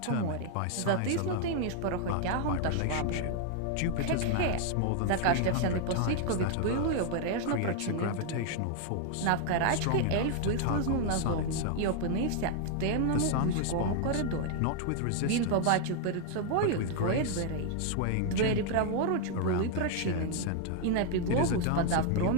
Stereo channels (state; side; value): different; both; correlation 0.00